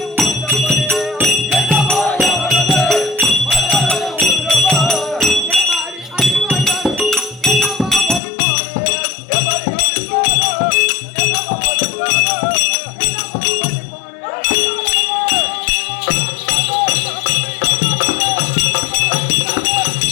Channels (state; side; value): drops out; right; at 8.2 s